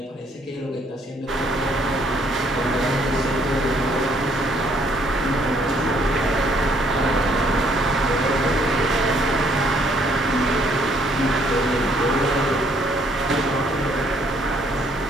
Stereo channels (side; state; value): both; normal; correlation 0.66